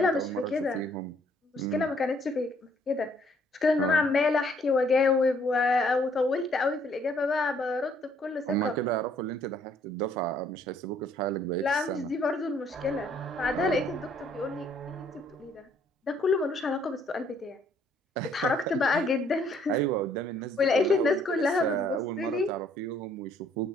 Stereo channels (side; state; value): both; normal; correlation 0.64